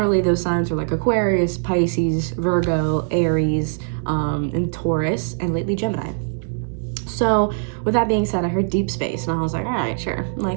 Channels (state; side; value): silent; left; digital silence